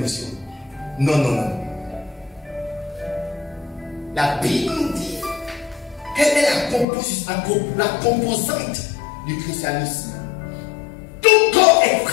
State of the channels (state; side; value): drops out; right; at 6.9 s